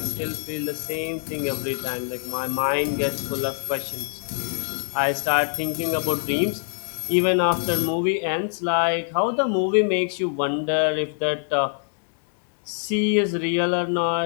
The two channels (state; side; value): silent; right; 62 dB below the other